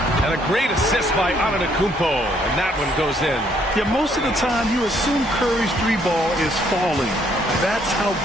And a great assist by Antetokounmpo. And that one goes in. Yeah, most of the time you assume Curry's 3-ball is falling. That's how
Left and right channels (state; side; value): normal; both; correlation 0.67